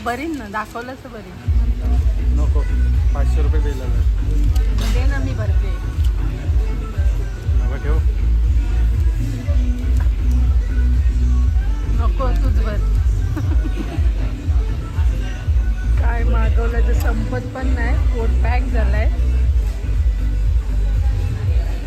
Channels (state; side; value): identical; both; correlation 1.00